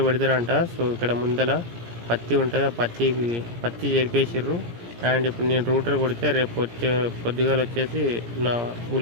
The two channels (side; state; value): left; late; 17 ms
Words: పెడతారంట. సో ఇక్కడ ముందల పత్తి ఉంటుంది, ఆ పత్తి చేరిపేసిర్రు. అండ్ ఇప్పుడు నేను రూటర్ కొడితే రేపు పొద్దుగాలు వచ్చేసి నా